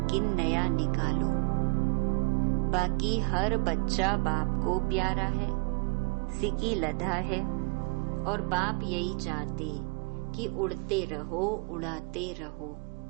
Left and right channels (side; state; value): left; quieter; 32.1 dB